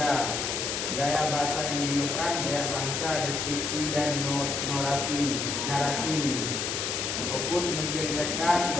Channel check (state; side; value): noise; left; hiss, 1 dB below the sound